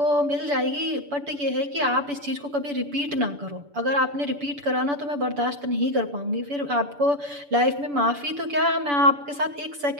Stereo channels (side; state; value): left; late; 7.0 ms